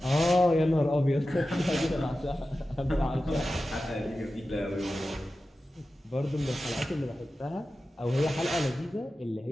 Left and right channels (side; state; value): both; normal; correlation 0.93